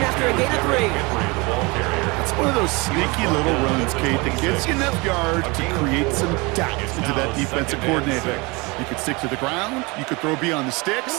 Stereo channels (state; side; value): quieter; left; 26.2 dB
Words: a gain of 3. It's one of those sneaky little runs, Kate, that gets you enough yards to create some doubt into that defensive coordinator. You could stick to the ground, you could throw beyond the